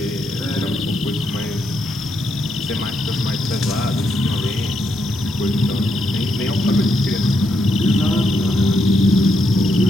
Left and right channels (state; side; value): normal; both; correlation 0.79